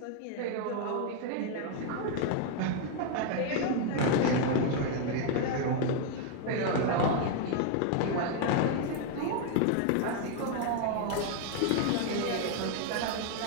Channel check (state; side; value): different; both; correlation 0.01